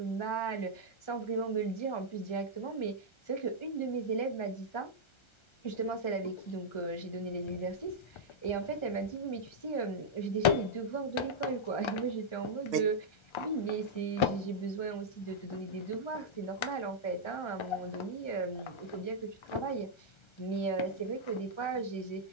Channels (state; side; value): late; right; 1.3 ms